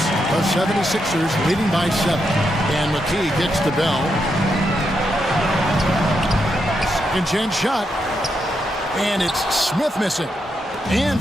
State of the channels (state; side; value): normal; both; correlation 0.82